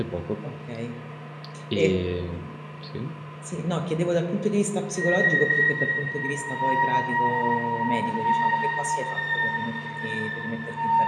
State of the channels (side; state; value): both; identical; correlation 1.00